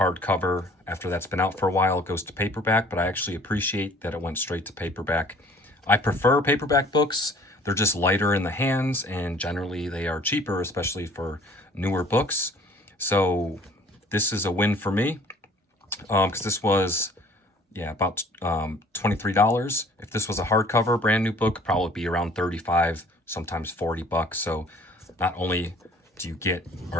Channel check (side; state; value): both; normal; correlation 0.53